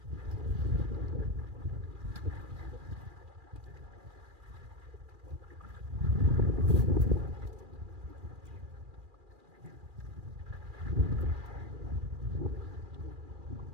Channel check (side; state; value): left; late; 2.4 ms